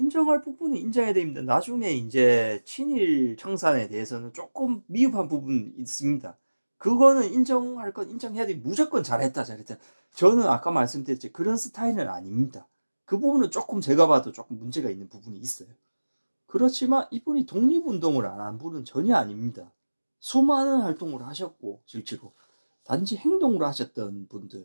부분은 인정해야 됩니다. 나중에 이제 친일 청산에 대해서는 조금 미흡한 부분이 있습니다. 그거는 인정할 건 인정해야 돼. 무조건 잘했다. 저는 아까 말씀드렸죠, 그런 스타일은 아닙니다. 그 부분은 조금 제가 봐도 조금 문제가 있는 부분이 있어요. 그렇지만 이분이 독립운동을 안 한 분은 전혀 아닙니다. 수많은 활동을 하셨고 실제로 단지 행동으로 하셨던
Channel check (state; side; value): inverted; both; correlation -1.00